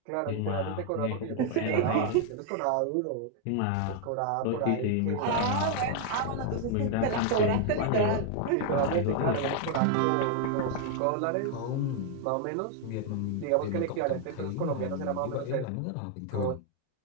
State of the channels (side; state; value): both; different; correlation 0.00